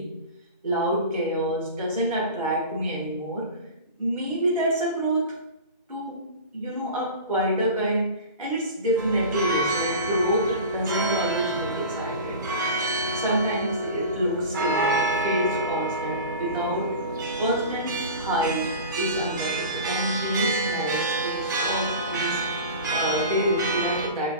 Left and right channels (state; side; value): inverted; both; correlation -0.33